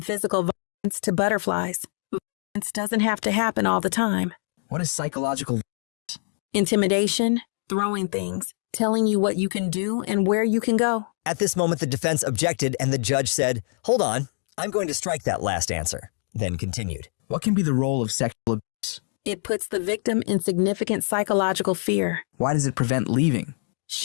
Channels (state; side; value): silent; right; 62 dB below the other